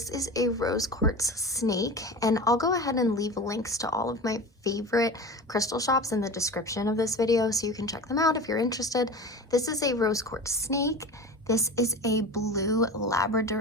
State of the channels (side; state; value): both; normal; correlation 0.32